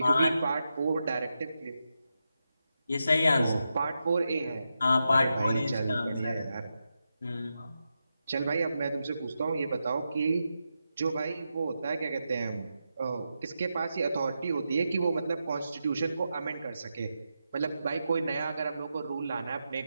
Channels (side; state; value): both; inverted; correlation -0.87